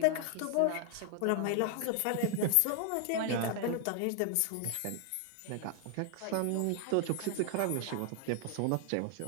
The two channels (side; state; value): both; different; correlation 0.00